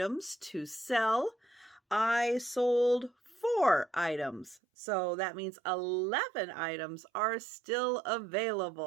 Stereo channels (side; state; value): left; drops out; at 4.6 s